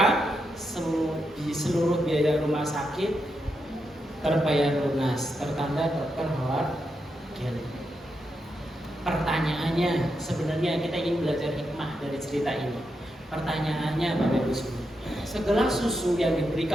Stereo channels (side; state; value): both; normal; correlation 0.84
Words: di seluruh biaya rumah sakit terbayar lunas, tertanda Dr. Howard Kelly. Pertanyaannya, sebenarnya kita ingin belajar hikmah dari cerita ini. Pertanyaannya Bapak Ibu semua, segelas susu yang